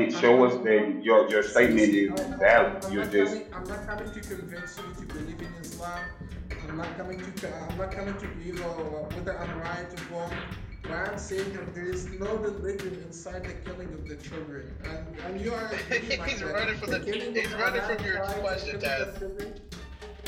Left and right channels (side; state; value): both; identical; correlation 1.00